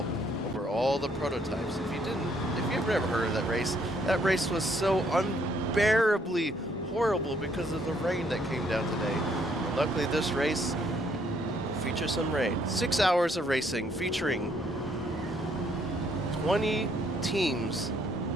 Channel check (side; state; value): both; normal; correlation 0.68